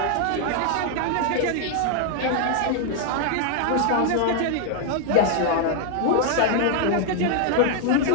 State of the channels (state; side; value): different; both; correlation 0.00